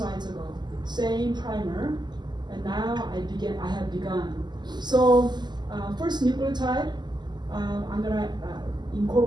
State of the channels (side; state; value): left; late; 0.21 ms